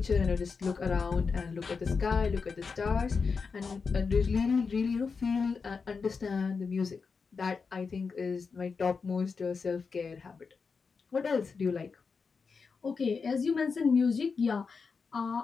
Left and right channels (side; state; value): right; quieter; 5.1 dB